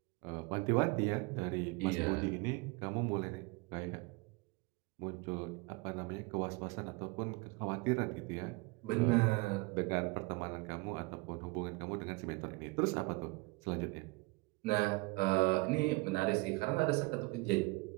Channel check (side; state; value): left; quieter; 25.4 dB